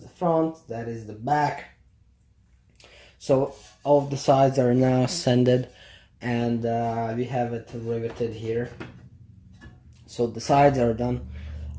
front, that is the back. So all of the sides are now sanded, and we have it riveted here. So the sides are done.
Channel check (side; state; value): both; identical; correlation 1.00